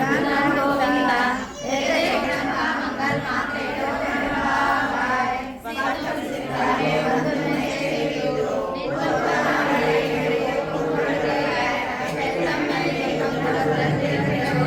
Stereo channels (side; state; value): both; identical; correlation 1.00